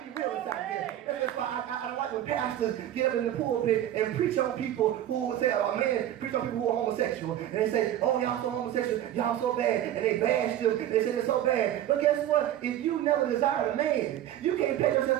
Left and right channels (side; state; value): left; quieter; 12.1 dB